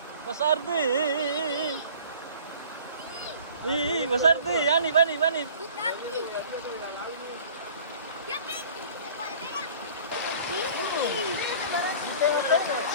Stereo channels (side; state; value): both; inverted; correlation -0.48